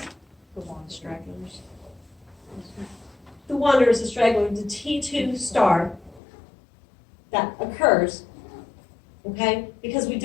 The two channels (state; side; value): drops out; right; at 6.2 s